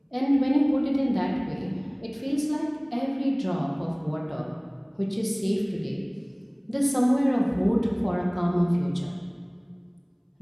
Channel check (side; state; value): both; identical; correlation 1.00